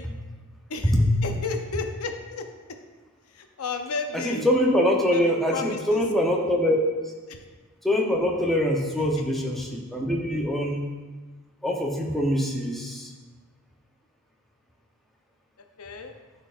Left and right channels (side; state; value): both; normal; correlation 0.53